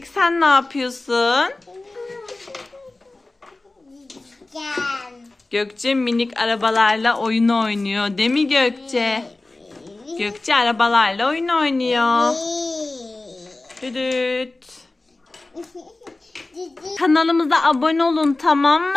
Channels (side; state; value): right; quieter; 3.0 dB